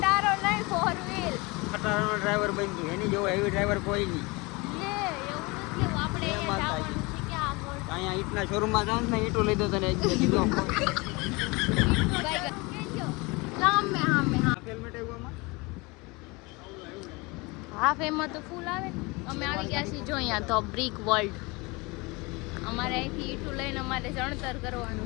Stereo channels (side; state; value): right; quieter; 25.8 dB